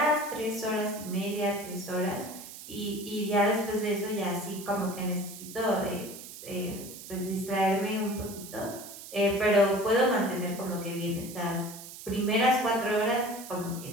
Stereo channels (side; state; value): right; noise; hiss, 13 dB below the sound